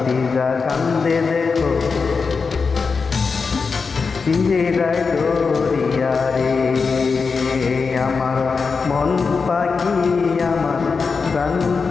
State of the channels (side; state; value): right; quieter; 4.9 dB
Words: কান্দে দেখো পিঞ্জিরায় ধরিয়া রে। আমার মন পাখি আমার প্রাণ